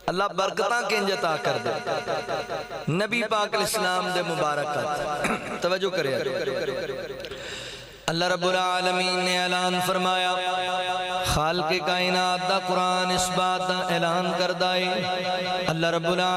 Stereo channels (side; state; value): both; identical; correlation 1.00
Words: اللہ برکتاں کنج عطا کر دے نبی پاک علیہ السلام دے مبارکات توجہ کرے اللہ رب العالمین نے اعلان فرمایا خالق کائنات دا قرآن اس بات دا اعلان کردائے اللہ رب